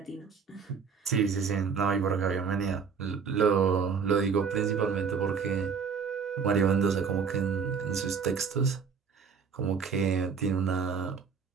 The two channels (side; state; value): left; quieter; 6.1 dB